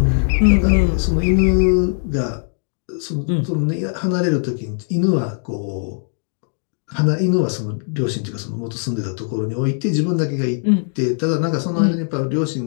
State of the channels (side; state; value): right; silent; 66 dB below the other